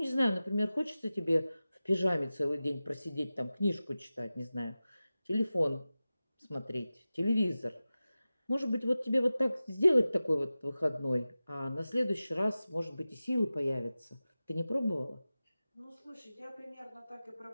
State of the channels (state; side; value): inverted; both; correlation -0.95